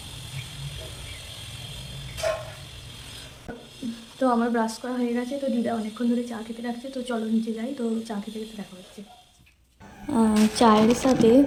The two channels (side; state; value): both; identical; correlation 1.00